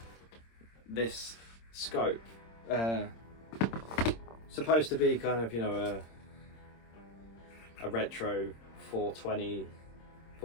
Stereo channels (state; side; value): late; right; 26 ms